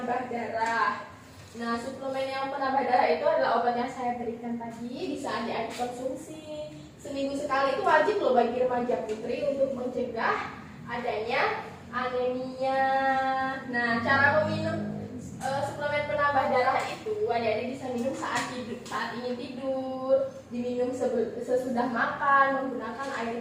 darah. Nah, suplemen yang penambah darah itu adalah obat yang saya berikan tadi, bisa adik-adik konsumsi. Seminggu sekali itu wajib loh bagi remaja putri untuk mencegah adanya anemia. Nah, cara meminum suplemen penambah darah itu adik-adik bisa minum saat ingin tidur, diminum sesudah makan menggunakan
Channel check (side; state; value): both; identical; correlation 1.00